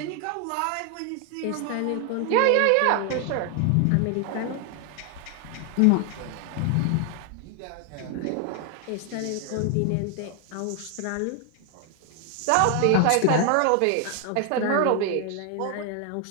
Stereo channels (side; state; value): both; different; correlation 0.00